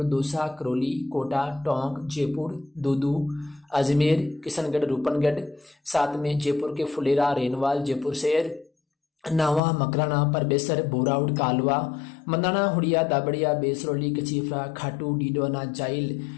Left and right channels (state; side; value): drops out; right; at 9.6 s